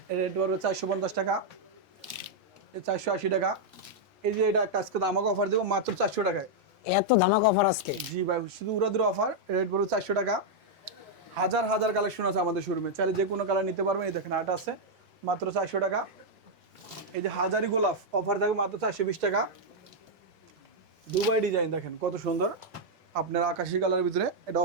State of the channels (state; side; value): normal; both; correlation -0.03